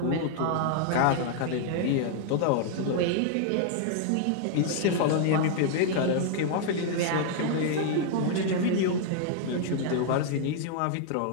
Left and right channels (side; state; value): both; different; correlation 0.00